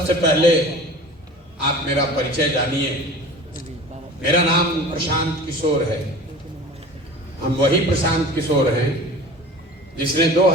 पहले आप मेरा परिचय जानिए। मेरा नाम प्रशांत किशोर है। हम वही प्रशांत किशोर हैं जिसने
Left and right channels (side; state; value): both; normal; correlation 0.39